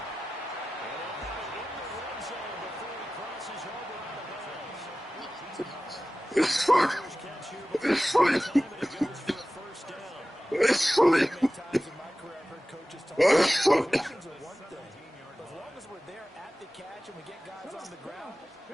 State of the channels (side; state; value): both; normal; correlation 0.96